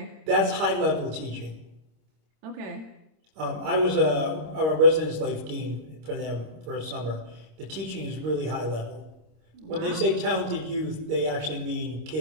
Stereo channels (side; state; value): left; late; 26 ms